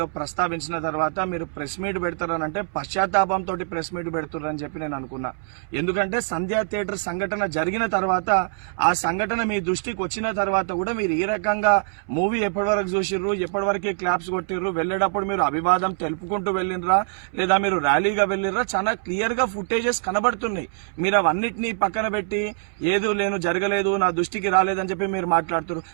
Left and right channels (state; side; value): silent; left; 63 dB below the other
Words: ప్రస్తావించిన తర్వాత మీరు ప్రెస్ మీట్ పెడతారనంటే పశ్చాత్తాపంతో ప్రెస్ మీట్ పెడుతున్నారని చెప్పి నేను అనుకున్నా. ఎందుకంటే సంధ్యా థియేటర్ సంఘటన జరిగిన తర్వాత ఆ సంఘటన మీ దృష్టికి వచ్చిన తర్వాత కూడా మీరు ఈ రకంగా మూవీ ఎప్పటి వరకు చూసిర్రు, ఎప్పటి వరకే క్లాప్స్ కొట్టిర్రు, వెళ్లేటప్పుడు మీరు అభివాదం తెలుపుకుంటూ వెళ్ళినరా లేదా మీరు ర్యాలీగా వెళ్ళినరా, చాలా క్లియర్ గా ఫుటేజెస్ కనబడుతున్నాయి. మీరు అవన్నిటినీ పక్కన పెట్టి ఏదో లేను జరగలేదు నా దృష్టికి రాలేదని చెప్పి మీరు మాట్లాడుతున్నారు.